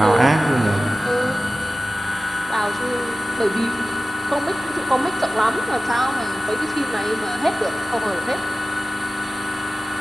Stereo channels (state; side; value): normal; both; correlation 0.96